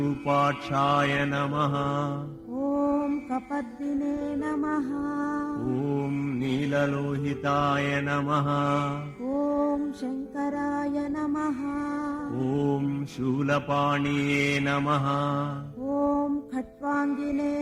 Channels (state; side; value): identical; both; correlation 1.00